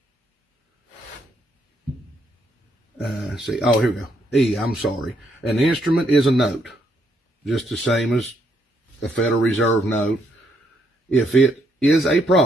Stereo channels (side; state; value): both; normal; correlation 0.74